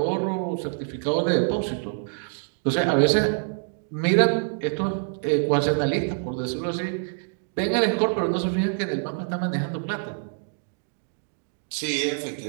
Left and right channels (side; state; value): left; silent; digital silence